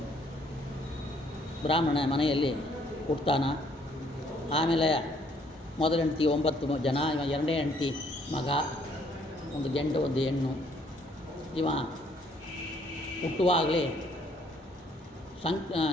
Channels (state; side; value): normal; both; correlation 0.65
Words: ಬ್ರಾಹ್ಮಣ ಮನೆಯಲ್ಲಿ ಹುಟ್ತಾನ. ಆಮೇಲೆ ಮೊದಲ ಹೆಂಡತಿ 9 ಜನ, ಇವ ಎರಡನೇ ಹೆಂಡತಿ ಮಗ, ಒಂದು ಗಂಡು ಒಂದು ಹೆಣ್ಣು. ಇವ ಹುಟ್ಟುವಾಗಲೇ